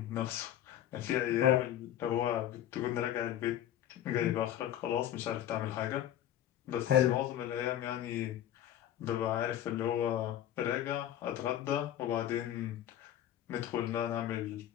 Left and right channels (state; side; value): quieter; right; 11.4 dB